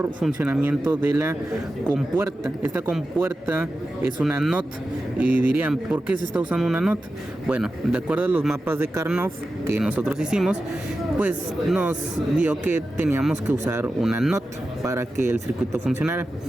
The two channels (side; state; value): both; normal; correlation 0.92